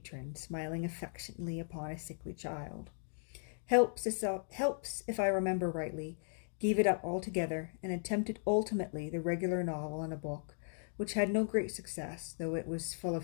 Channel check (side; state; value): right; silent; digital silence